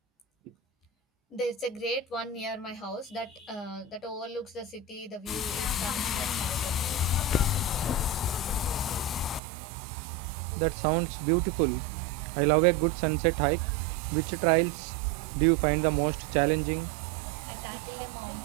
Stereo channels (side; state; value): left; drops out; at 9.4 s